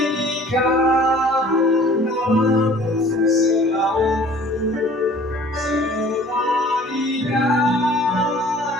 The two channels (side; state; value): both; normal; correlation 0.50